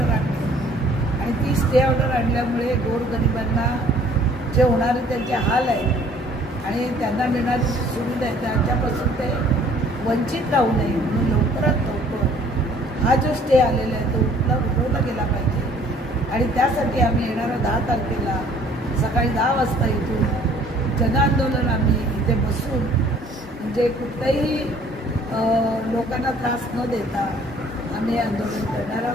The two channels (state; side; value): normal; both; correlation 0.57